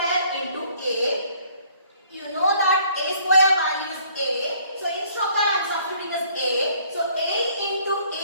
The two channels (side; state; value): both; inverted; correlation -0.60